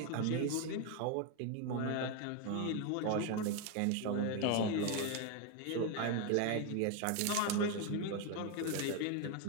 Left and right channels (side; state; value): both; different; correlation 0.02